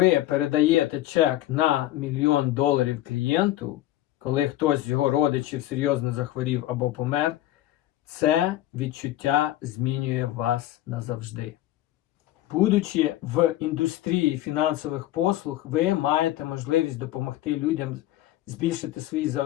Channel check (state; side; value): quieter; right; 14.7 dB